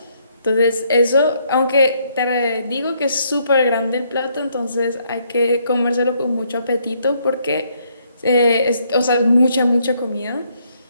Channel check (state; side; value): inverted; both; correlation -0.71